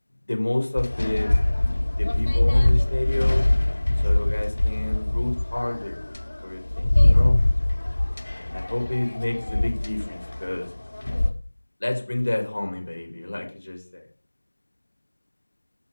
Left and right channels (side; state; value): both; inverted; correlation -1.00